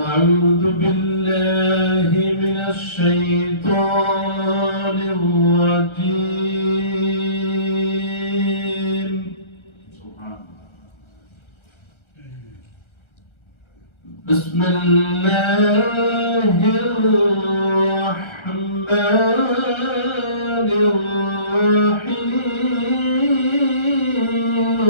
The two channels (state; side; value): late; right; 1.3 ms